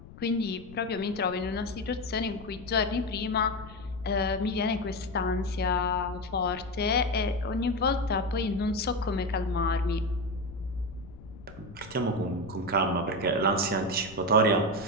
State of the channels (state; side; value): noise; left; rumble, 18 dB below the sound